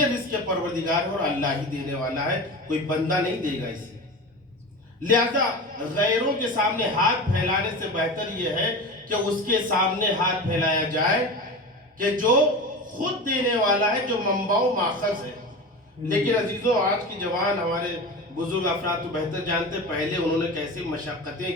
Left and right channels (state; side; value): normal; both; correlation 0.29